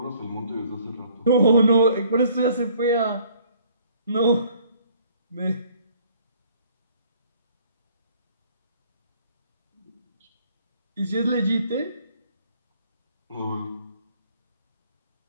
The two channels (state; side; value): inverted; both; correlation -0.59